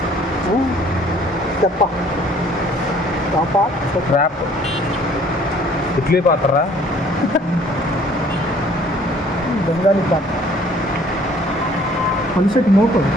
ట్రాప్. ఇడ్లీ పాత్రరా, బెంగాలీ పాత్ర, పలిసెట్ మోకు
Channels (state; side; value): normal; both; correlation 0.56